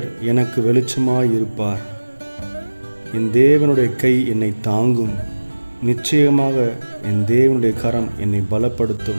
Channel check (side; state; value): both; inverted; correlation -1.00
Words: எனக்கு வெளிச்சமாயிருப்பார். என் தேவனுடைய கை என்னை தாங்கும். நிச்சயமாக என் தேவனுடைய கரம் என்னை